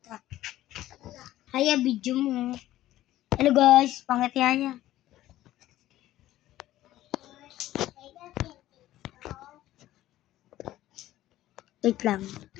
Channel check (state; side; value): quieter; right; 14.5 dB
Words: Haya, video mo. Hello guys, pangit yaya. Wait lang.